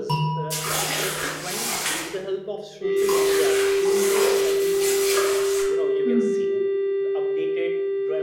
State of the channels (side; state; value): both; identical; correlation 1.00